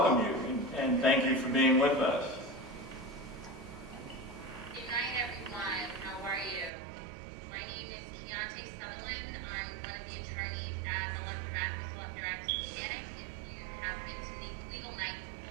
you, and thank you for being with us. Good night, everyone. How are you? My name is Keontae Sutherland. I'm one of the attorneys at the Left Mechanic. If you have been to Legal Night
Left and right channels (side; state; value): left; drops out; at 6.7 s